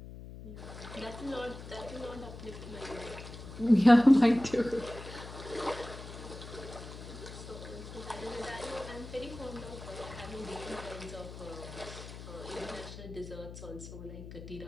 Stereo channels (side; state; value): left; noise; hum, 12 dB below the sound